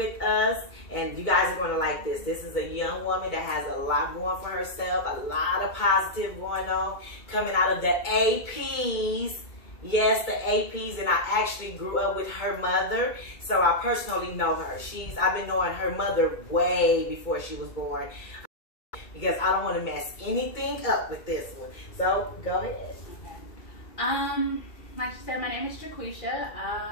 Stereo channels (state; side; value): late; right; 2.2 ms